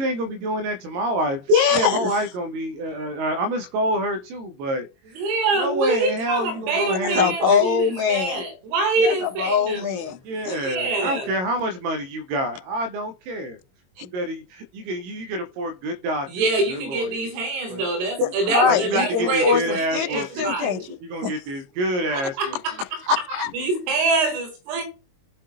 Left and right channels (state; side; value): late; left; 22 ms